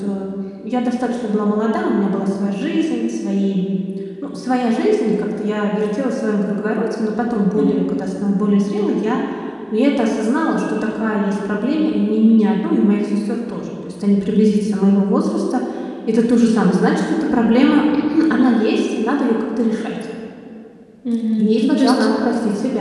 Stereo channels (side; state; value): both; identical; correlation 1.00